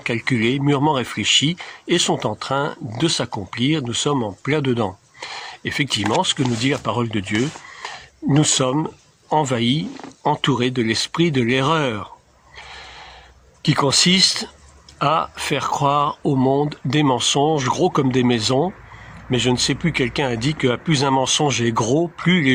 mûrement réfléchies et sont en train de s'accomplir. Nous sommes en plein dedans. Effectivement, ce que nous dit la parole de Dieu, nous sommes envahis, entourés de l'esprit de l'erreur, qui consiste à faire croire au monde des mensonges gros comme des maisons. Mais je ne sais plus, quelqu'un a dit que plus un mensonge est gros, plus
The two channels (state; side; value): identical; both; correlation 1.00